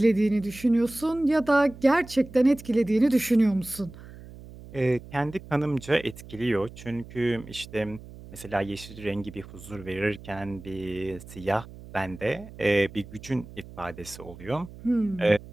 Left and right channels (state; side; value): noise; right; hum, 17 dB below the sound